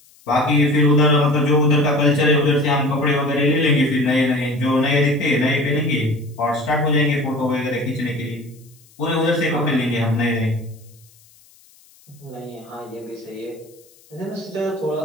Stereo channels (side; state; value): left; noise; hiss, 29 dB below the sound